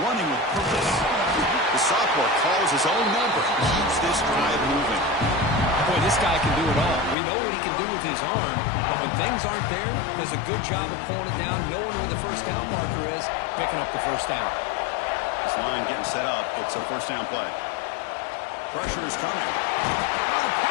with purpose. The sophomore calls his own number. Keeps this drive moving. Boy, this guy can do it all. We know what he can do with his arm, but when things aren't there, does a good job of pulling it down, knowing where the first down marker is, picking up the first down. This line getting set up. It's a first down play. Pressure is coming. Oh, the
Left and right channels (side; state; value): right; drops out; at 7.2 s